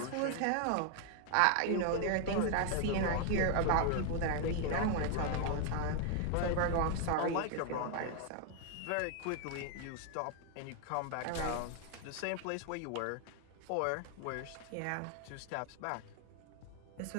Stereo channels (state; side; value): different; both; correlation 0.00